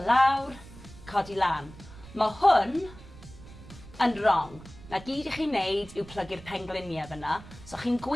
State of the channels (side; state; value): right; noise; rumble, 18 dB below the sound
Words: lawr, codi lan. Mae hwn yn wrong. Na gyd i chi'n neud yw plygu'r pengliniau fyna, so chi'n